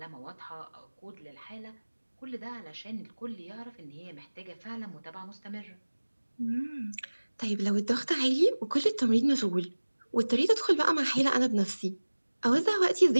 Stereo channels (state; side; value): inverted; both; correlation -1.00